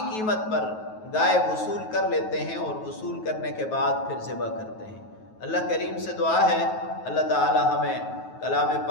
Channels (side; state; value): right; late; 9.3 ms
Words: قیمت پر گائے وصول کر لیتے ہیں، اور وصول کرنے کے بعد پھر ذبح کرتے ہیں۔ اللہ کریم سے دعا ہے اللہ تعالی ہمیں کلام